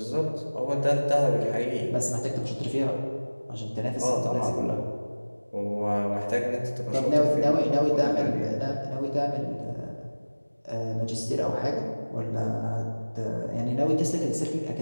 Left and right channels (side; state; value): both; inverted; correlation -1.00